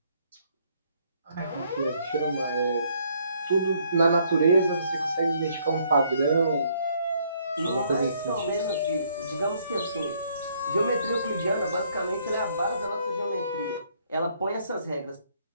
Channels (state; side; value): inverted; both; correlation -0.67